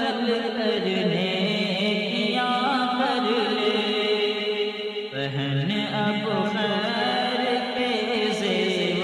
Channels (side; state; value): both; identical; correlation 1.00